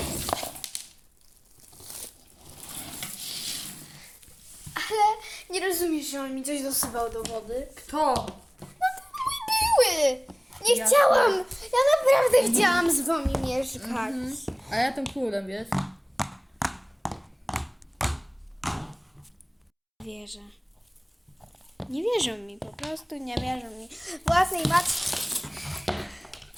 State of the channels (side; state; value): both; identical; correlation 1.00